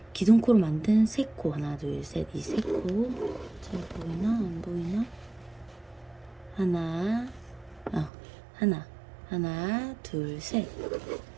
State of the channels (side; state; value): left; drops out; at 8.1 s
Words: 기둥코로 만든 3코 하나, 둘, 셋 이 3코 잘 보이나 안 보이나 하나, 둘, 셋